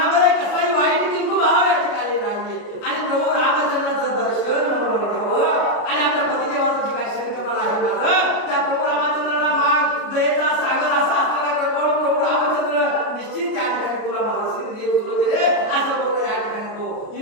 कसलाही वाईट किंतु भाव या ठिकाणी नाहीये आणि प्रभू रामचंद्राचं दर्शन म्हणून घ्यावं आणि आपल्या पतिदेवाचं जे काही शरीरकमल आहे माझं त्या प्रभू रामचंद्राला माग दयेचा सागर असा असलेला कृपाळू प्रभू रामचंद्र निश्चित या ठिकाणी तुला माझा सिद्ध देत सुलोचने असं बोलतो या ठिकाणी तो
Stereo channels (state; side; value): late; right; 33 ms